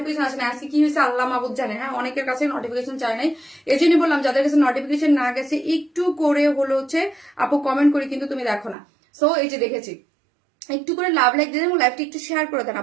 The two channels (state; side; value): drops out; left; at 8.8 s